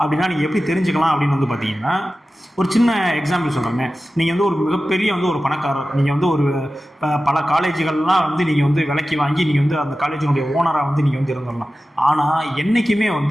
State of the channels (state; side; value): normal; both; correlation 0.95